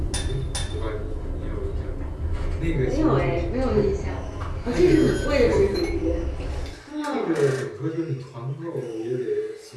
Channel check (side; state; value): both; identical; correlation 1.00